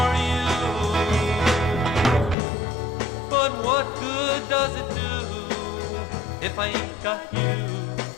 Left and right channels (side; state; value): right; drops out; at 2.4 s